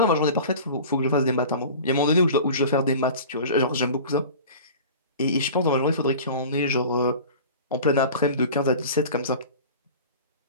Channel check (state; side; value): inverted; both; correlation -0.38